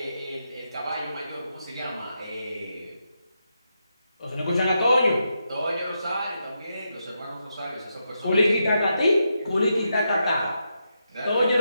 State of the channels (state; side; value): inverted; both; correlation -0.84